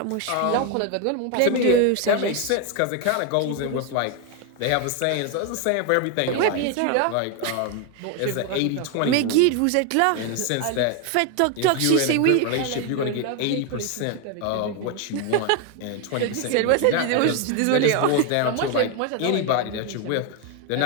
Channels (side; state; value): both; different; correlation 0.01